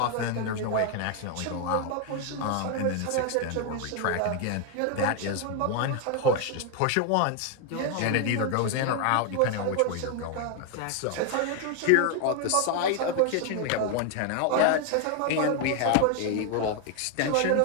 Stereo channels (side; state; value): both; different; correlation 0.01